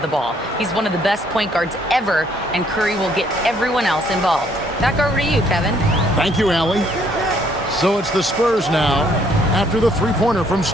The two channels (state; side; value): normal; both; correlation 0.65